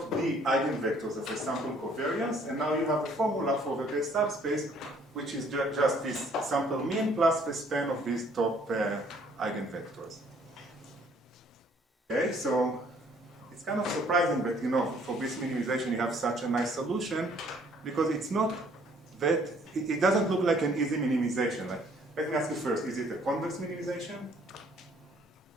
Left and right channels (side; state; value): both; normal; correlation 0.61